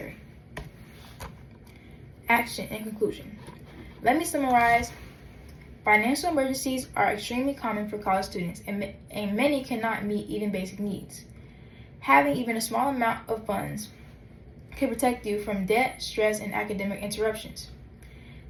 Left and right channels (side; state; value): both; identical; correlation 1.00